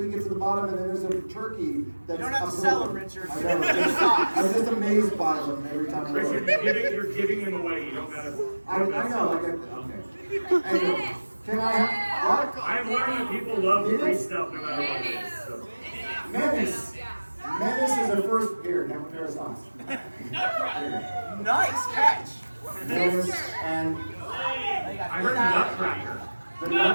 you get to the bottom, and then there's a turkey that's. You don't have to sell them, Richard. I know. I'm just amazed by them every time I look. Richard, you're giving them away. You don't gotta. I know. Okay. Anyway, can I have what? I've learned that people love free stuff no matter what it is. So. Menace. Menace is our first. Here, have a pair of socks. Nice catch. Menace and I heard Nutcracker. the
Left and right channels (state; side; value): inverted; both; correlation -1.00